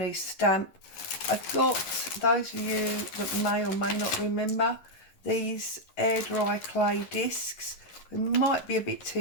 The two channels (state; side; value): late; right; 11 ms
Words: stamp. I've got, those of you that may or may not remember, these air dry clay discs. It might be a bit